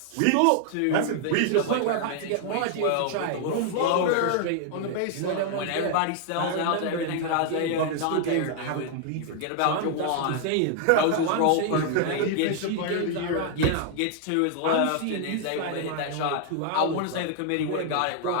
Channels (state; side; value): different; both; correlation 0.00